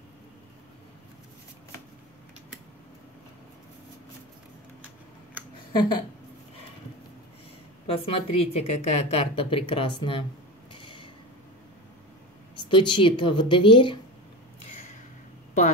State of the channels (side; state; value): both; normal; correlation 0.25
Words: Посмотрите, какая карта прекрасная. Стучит в дверь